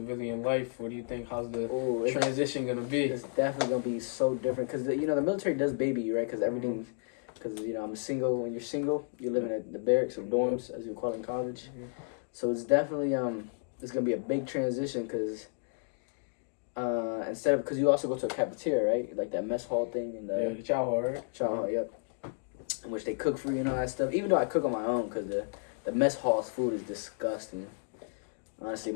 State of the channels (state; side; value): silent; right; 56 dB below the other